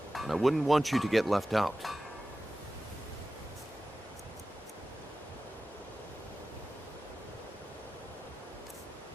and I wouldn't want you to get left out.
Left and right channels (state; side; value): normal; both; correlation 0.95